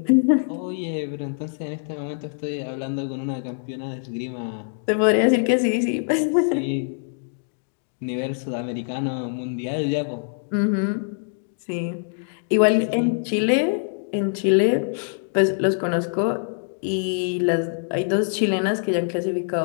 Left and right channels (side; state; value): right; silent; digital silence